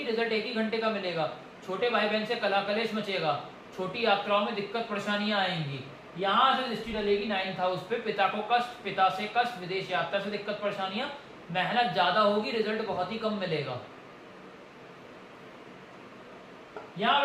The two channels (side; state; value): both; identical; correlation 1.00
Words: रिजल्ट 1 ही घंटे का मिलेगा। छोटे भाई बहन से कला कलेश मचेगा, छोटी यात्राओं में दिक्कत परेशानियां आएंगी। यहां से दृष्टि डलेगी 9th हाउस पे, पिता को कष्ट, पिता से कष्ट, विदेश यात्रा से दिक्कत परेशानियां, मेहनत ज्यादा होगी, रिजल्ट बहुत ही कम मिलेगा। यहां